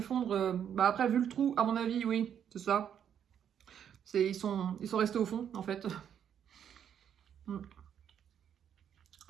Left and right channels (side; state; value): left; quieter; 8.9 dB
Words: Après, vu le trou, à mon avis, oui, c'est ça. Ils sont restés au fond, en fait.